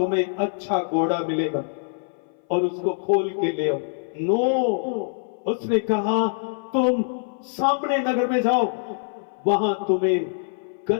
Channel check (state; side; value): silent; right; 58 dB below the other